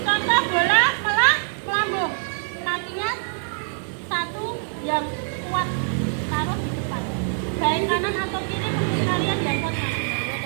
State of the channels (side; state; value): left; silent; 63 dB below the other